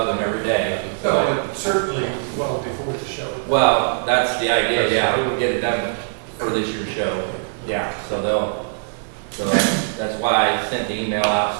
him every day. No, but certainly well before the show. Well, that's the idea, yeah, we'll get it done for this year's show. Yeah, so that's why I sent the email out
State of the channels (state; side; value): silent; left; digital silence